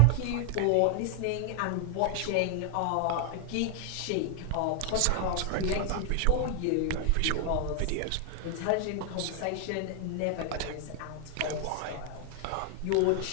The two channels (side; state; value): both; different; correlation 0.00